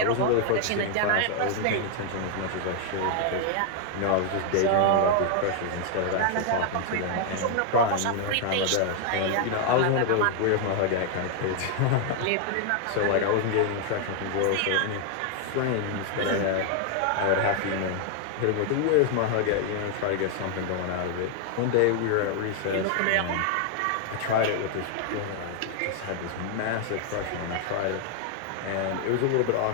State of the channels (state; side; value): different; both; correlation 0.00